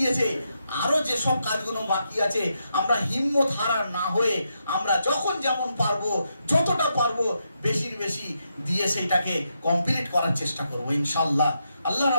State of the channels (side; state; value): both; inverted; correlation -0.82